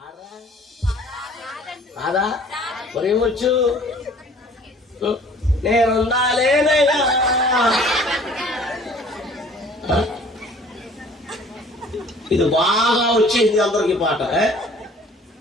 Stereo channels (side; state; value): both; normal; correlation 0.52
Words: కాదా? మరేమొచ్చు? నేనుండాలేనయ్యా. ఇది బాగా వచ్చేసింది అందరికి పాట.